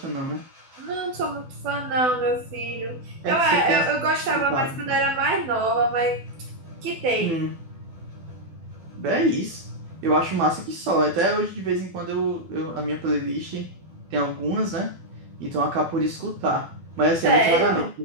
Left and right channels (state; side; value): late; left; 12 ms